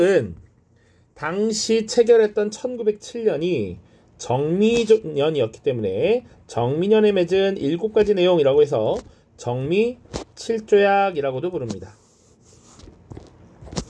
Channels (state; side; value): identical; both; correlation 1.00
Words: 당시 체결했던 1907년이 정미년이었기 때문에 정미년에 맺은 7가지 내용이라고 해서 정미 7조약이라고도 부릅니다.